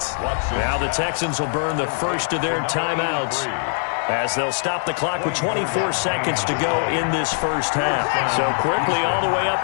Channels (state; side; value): silent; right; 64 dB below the other